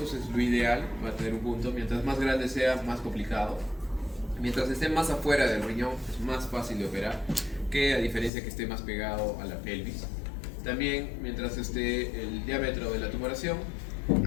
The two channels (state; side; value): drops out; right; at 8.3 s